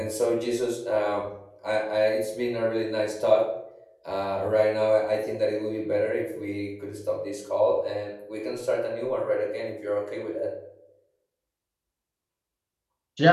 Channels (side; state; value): both; identical; correlation 1.00